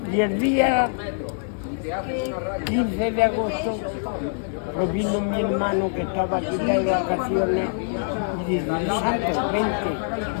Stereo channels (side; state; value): right; silent; digital silence